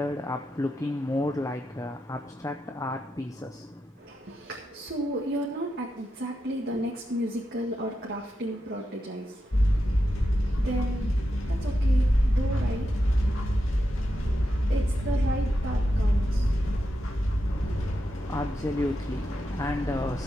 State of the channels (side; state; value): both; normal; correlation 0.87